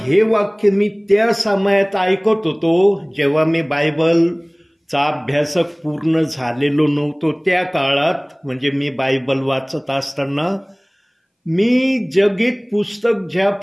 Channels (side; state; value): both; identical; correlation 1.00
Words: वाक्य मी त्या समयात ऐकत होतो, जेव्हा मी बायबलचा अभ्यासक पूर्ण झालेलो नव्हतो त्या काळात, म्हणजे मी बायबल वाचत असताना मी जगीत पुस्तक